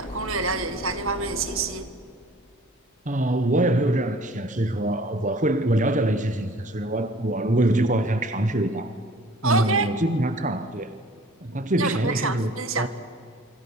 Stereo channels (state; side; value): normal; both; correlation 0.49